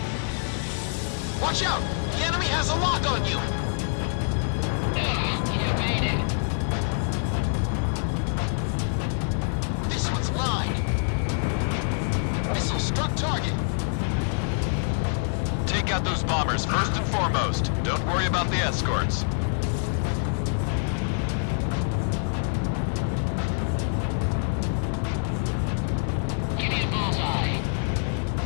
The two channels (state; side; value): silent; right; 60 dB below the other